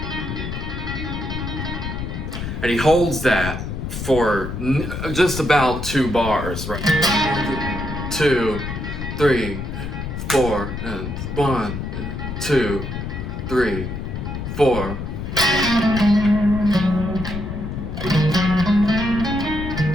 And he holds that for just about 2 bars, right? 2, 3, 4, and 1, 2, 3, 4.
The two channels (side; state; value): left; noise; rumble, 5 dB below the sound